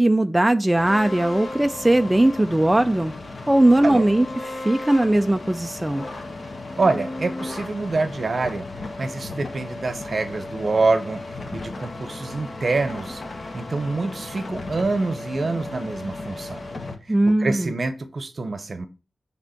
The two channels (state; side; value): normal; both; correlation 0.98